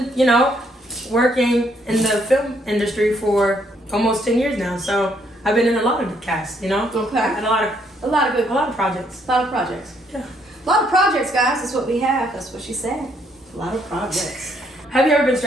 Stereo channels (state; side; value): normal; both; correlation 0.70